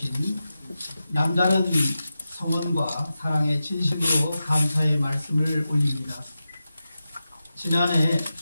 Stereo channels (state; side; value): inverted; both; correlation -0.92